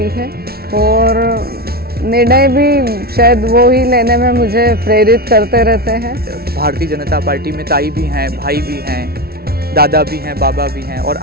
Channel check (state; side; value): late; left; 0.44 ms